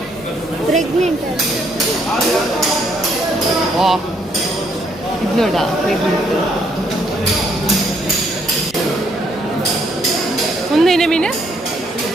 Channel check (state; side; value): normal; both; correlation 0.70